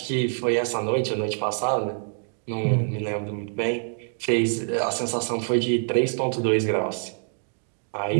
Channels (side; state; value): left; silent; 61 dB below the other